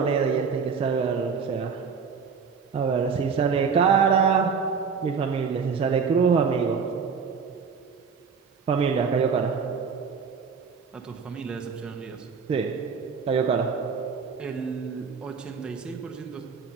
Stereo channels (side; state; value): left; quieter; 5.8 dB